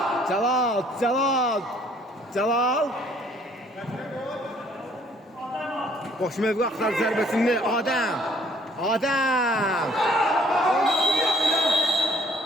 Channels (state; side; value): normal; both; correlation 0.60